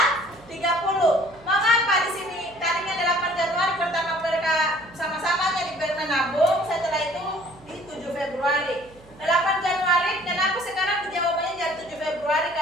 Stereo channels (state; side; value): noise; right; hum, 24 dB below the sound